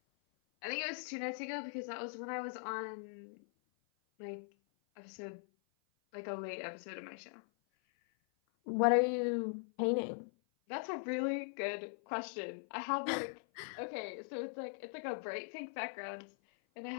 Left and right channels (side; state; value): right; silent; 51 dB below the other